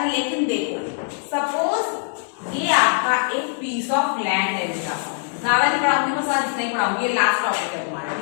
लेकिन देखो सपोज ये आपका एक पीस ऑफ लैंड है। ज्यादा नहीं पढ़ाऊंगी, बस आज इतना ही पढ़ाऊंगी, ये लास्ट टॉपिक है तुम्हारा।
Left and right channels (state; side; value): silent; right; 58 dB below the other